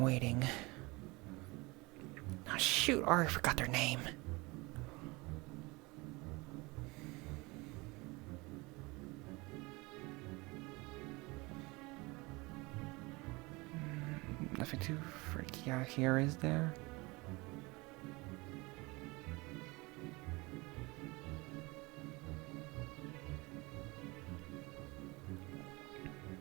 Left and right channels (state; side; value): quieter; left; 24.5 dB